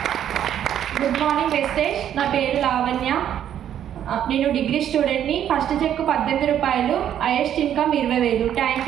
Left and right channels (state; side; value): quieter; left; 10.2 dB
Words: Good morning Vestige. నా పేరు లావణ్య. నేను డిగ్రీ స్టూడెంట్ని. ఫస్ట్ చెక్ 18 రూపాయలు, highest income 20000. Thank